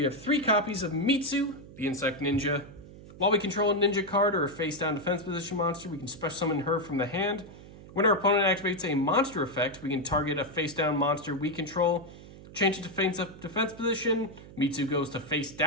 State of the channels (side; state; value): right; noise; hum, 18 dB below the sound